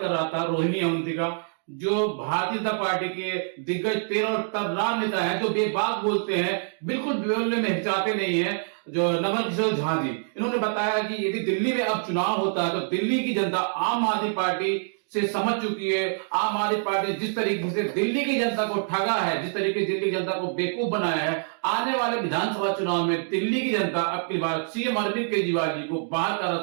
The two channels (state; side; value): silent; left; digital silence